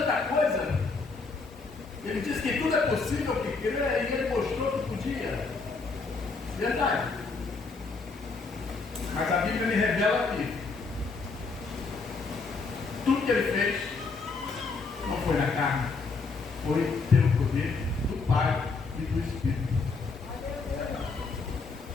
coisa? Ele disse que tudo é possível que crê e ele mostrou que podia. Verdade. Mas a Bíblia me revela que tudo que ele fez não foi na carne, foi pelo poder do Pai e do Espírito.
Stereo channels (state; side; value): quieter; right; 4.3 dB